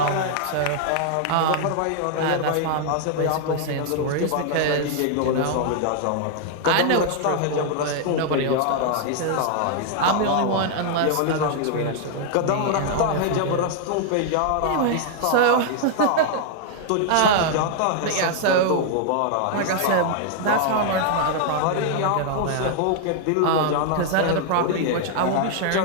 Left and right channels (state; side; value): different; both; correlation 0.00